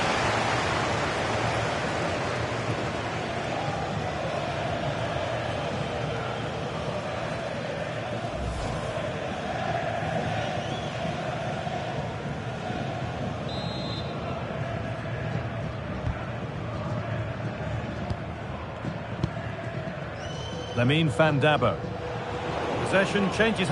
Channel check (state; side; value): identical; both; correlation 1.00